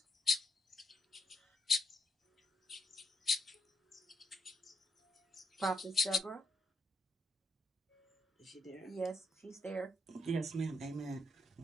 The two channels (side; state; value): both; normal; correlation 0.79